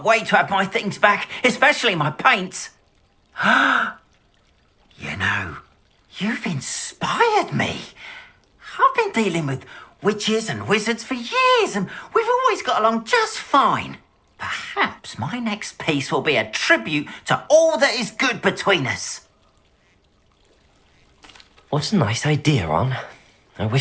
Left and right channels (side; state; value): both; identical; correlation 1.00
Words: wait to have my things back, especially my paints. You know, you've inspired me. I've been dealing with witches and wizards for years, and we've always got along just fine. Perhaps my next piece will be a tribute to all that is good between us. What a nice idea, On. I